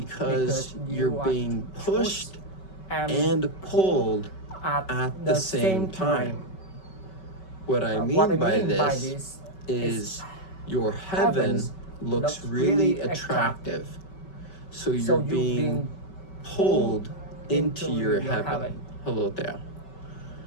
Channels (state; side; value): late; right; 5.3 ms